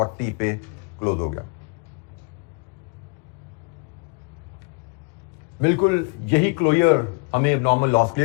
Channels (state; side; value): quieter; right; 32.2 dB